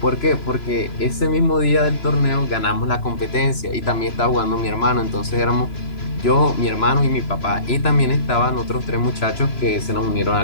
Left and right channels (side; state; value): right; late; 3.0 ms